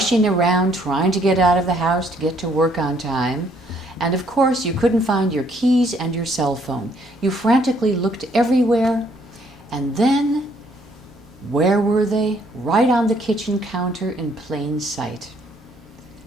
around trying to get out of the house to get to work on time, and of course you couldn't find your keys and your cell phone. You frantically looked everywhere, and then where were they? Right on the kitchen counter in plain sight.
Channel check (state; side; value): normal; both; correlation 0.66